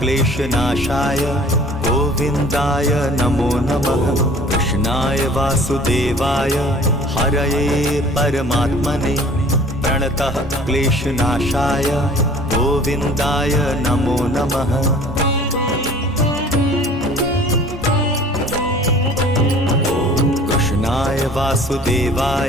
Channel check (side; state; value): both; normal; correlation 0.49